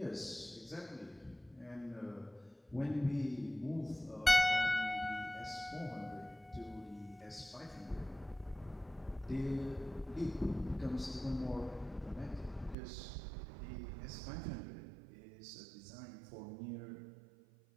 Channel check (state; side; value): drops out; left; at 12.8 s